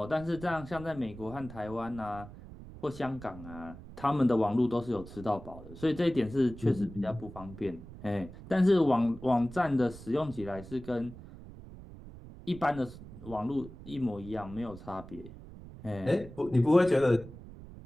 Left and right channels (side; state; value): right; noise; rumble, 15 dB below the sound